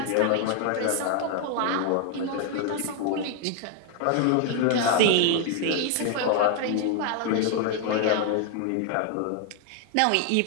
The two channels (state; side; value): different; both; correlation 0.00